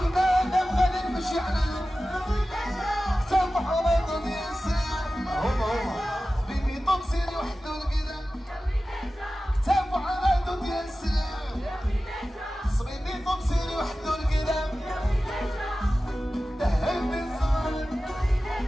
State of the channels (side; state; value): both; normal; correlation 0.95